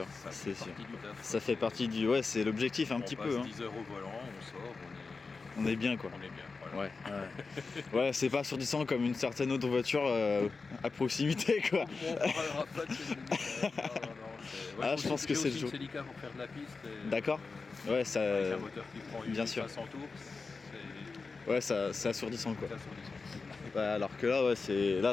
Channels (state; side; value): quieter; right; 4.3 dB